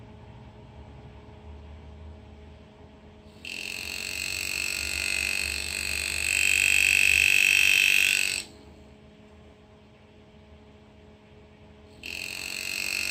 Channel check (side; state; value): both; identical; correlation 1.00